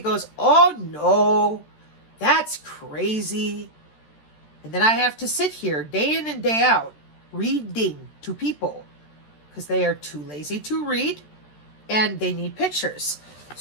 goes, oh no, that's crazy. And then I have to sit here day in and day out reading to people because they are too lazy to read and they need pictures.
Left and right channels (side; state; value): right; late; 13 ms